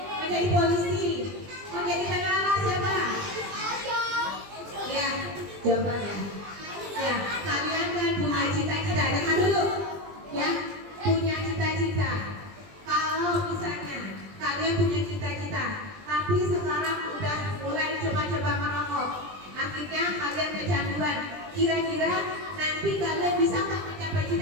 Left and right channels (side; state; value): left; late; 20 ms